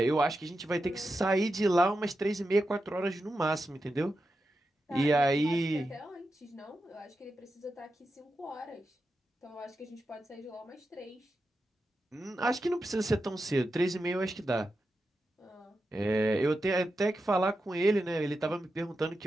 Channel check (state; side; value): normal; both; correlation 0.89